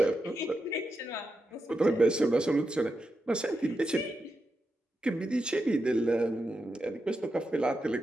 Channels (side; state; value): both; normal; correlation 0.87